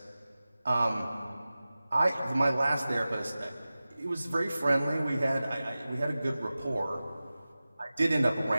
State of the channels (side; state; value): both; inverted; correlation -0.96